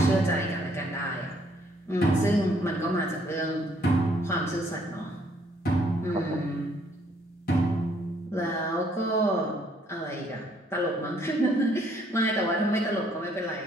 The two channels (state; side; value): normal; both; correlation 0.66